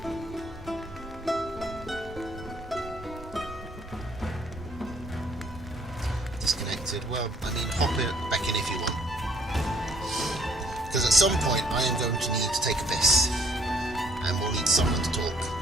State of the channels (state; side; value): normal; both; correlation 0.62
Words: Disconnected. Well, I mean, hop it back in if you want. Because at some point, I am going to need to take a piss. And we'll need someone to talk